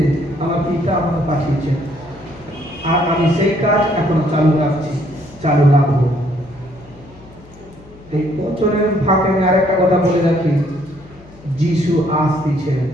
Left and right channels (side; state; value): left; noise; hum, 22 dB below the sound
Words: আমার পিতা আমাকে পাঠিয়েছে। আর আমি সেই কাজ এখনো চালু রাখছি, চালু রাখবো। এই বছরের ফাঁকে আমি আরেকটা কথা বলে রাখি, যিশু আসতেছে।